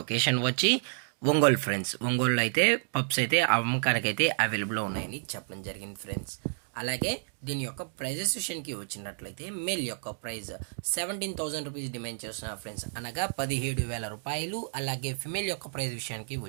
వచ్చి ఒంగోలు ఫ్రెండ్స్. ఒంగోలులో అయితే పప్స్ అయితే అమ్మకానికి అయితే అవైలబుల్లో ఉన్నాయని చెప్పడం జరిగింది ఫ్రెండ్స్. అలాగే దీని యొక్క ప్రైజెస్ విషయానికి వచ్చినట్లయితే మేల్ యొక్క ప్రైజ్ 17,000 రూపీస్ డిమాండ్ చేస్తున్నారు ఫ్రెండ్స్, అనగా 17,000 రూపాయలు. అలాగే ఫిమేల్ యొక్క ప్రైజ్ విషయానికి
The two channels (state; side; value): silent; left; digital silence